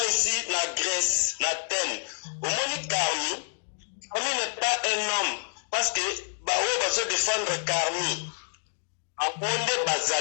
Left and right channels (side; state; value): right; silent; 59 dB below the other